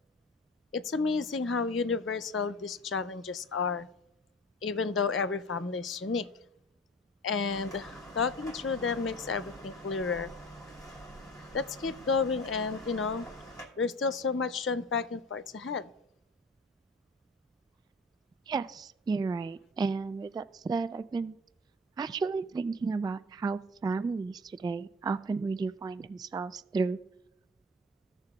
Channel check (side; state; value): both; normal; correlation 0.37